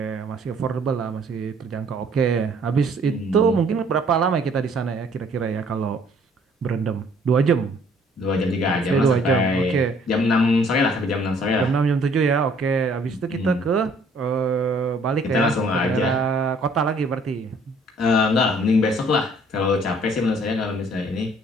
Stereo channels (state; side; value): normal; both; correlation 0.59